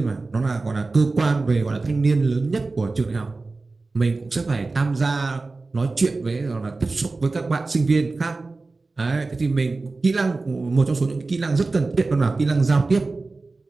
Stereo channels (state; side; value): quieter; left; 3.6 dB